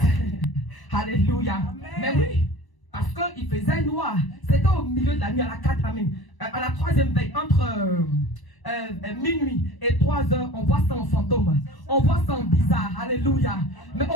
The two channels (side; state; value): right; late; 1.0 ms